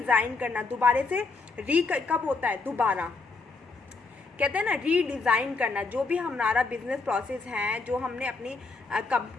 करना, दोबारा से। री कब होता है? दोबारा। कहते हैं ना रीडिज़ाइन करना। जो भी हमारा बिजनेस प्रोसेस है, जो हमने अपनी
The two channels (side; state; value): right; quieter; 3.9 dB